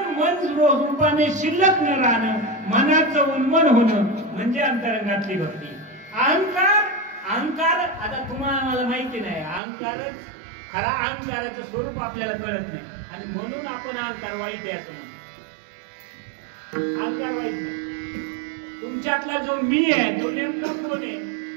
रूपाने शिल्लक न राहणं, मनाचं उन्मन होणं म्हणजे अंतरंगातली भक्ती. अहंकार आता तुम्हाला मला माहिती नाही. अहंकारच खरा अहंकाराचं स्वरूप आपल्याला कळत नाही आणि म्हणून आपण अहंकार वाईट आहे असं म्हणतो. अहंकार वाईट नाही. तुमच्यातला जो मी आहे तो नेमका कोण आहे?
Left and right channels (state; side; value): drops out; left; at 9.6 s